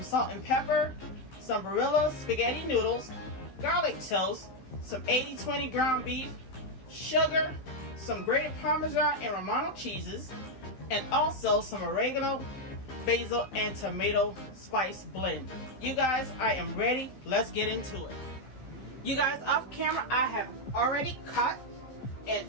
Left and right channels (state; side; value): late; right; 15 ms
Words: salt and pepper, some Barilla spaghetti noodles, garlic toast, some 80-20 ground beef, sugar, some grated Parmesan and Romano cheeses, and also some oregano, basil, and tomato spice blend. You guys, I am ready. Let's get into it. You guys, off camera, I have already cut and